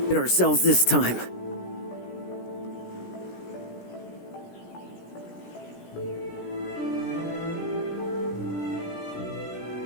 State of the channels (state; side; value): late; right; 17 ms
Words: Hit ourselves this time.